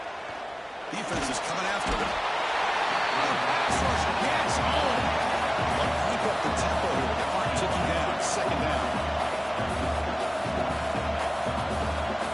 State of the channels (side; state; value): both; identical; correlation 1.00